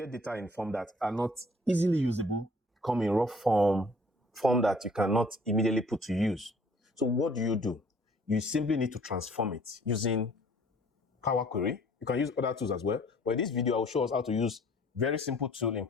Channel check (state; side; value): normal; both; correlation 0.56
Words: data in form that are not easily usable, come in raw form that you cannot immediately put to use. So what do? You simply need to transform it using Power Query. You can use other tools as well. But in this video, I will show us how to use very simple tool in